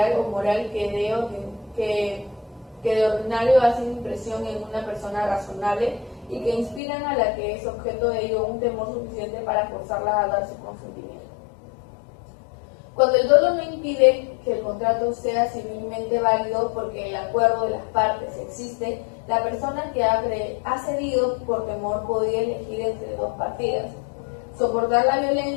o moral que de ordinario hacen impresión en una persona razonable y que inspiran a la que es objeto de ello un temor suficiente para forzarla a dar su consentimiento. Cuando el dolo no impide que el contrato sea civilmente válido porque el acuerdo de las partes existe, la persona que ha cedido por temor podía elegir entre dos partidas: soportar la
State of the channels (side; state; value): right; drops out; at 6.8 s